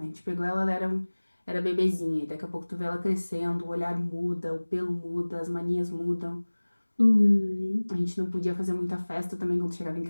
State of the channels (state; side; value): inverted; both; correlation -1.00